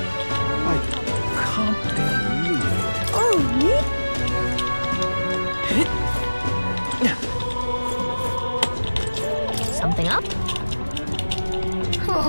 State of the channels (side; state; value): both; inverted; correlation -1.00